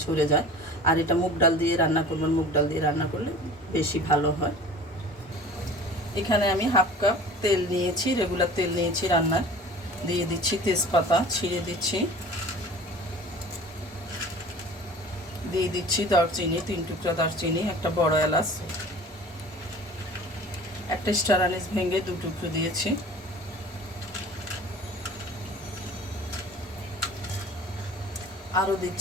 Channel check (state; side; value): normal; both; correlation 0.43